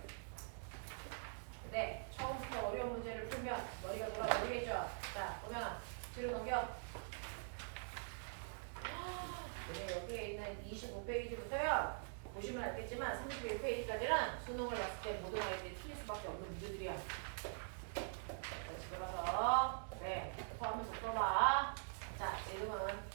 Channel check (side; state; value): left; silent; digital silence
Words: 네. 처음부터 어려운 문제를 풀면 머리가 돌아가겠죠. 자, 보면 뒤로 넘겨. 네, 여기에 있는 25페이지부터요. 보시면 알겠지만 31페이지까지는 수능을 봤을 때 모든 아이들이 틀릴 수밖에 없는 문제들이야. 그렇지. 그래서 토하면서 써봐. 자, 얘는